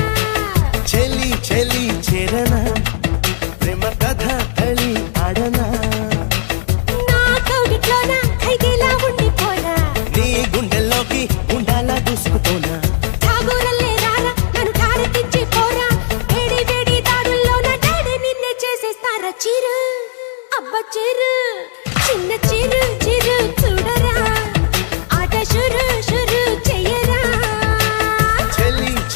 చెలి చెలి చేరనా ప్రేమ కథ కళి ఆడనా నా కౌగిట్లోన ఖైదీలా ఉండిపోరా నీ గుండెల్లోకి గుండాలా దూసుకుపోనా ఠాగూరల్లే రారా నన్ను ఠారెత్తించి పోరా వేడి వేడి దాడుల్లోన డాడీ నిన్నే చేసేస్తారా చిరు అబ్బ చిరు చిన్న చిరు చిరు చూడరా ఆట షురు షురు చెయ్యరా చెలి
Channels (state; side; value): silent; right; digital silence